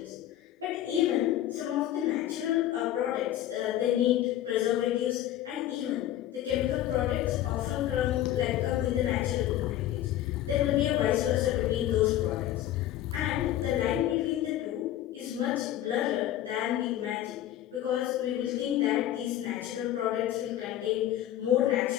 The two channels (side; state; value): right; quieter; 12.8 dB